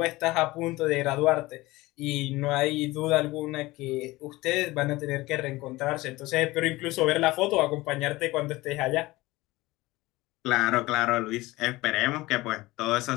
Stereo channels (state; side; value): quieter; right; 19.8 dB